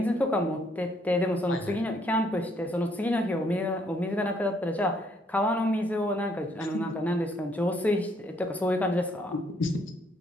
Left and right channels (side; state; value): both; normal; correlation 0.68